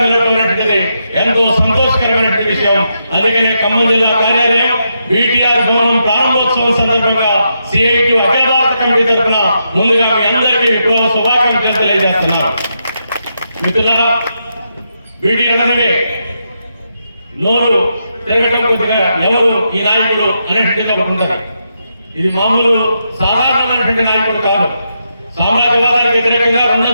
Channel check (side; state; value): both; inverted; correlation -0.82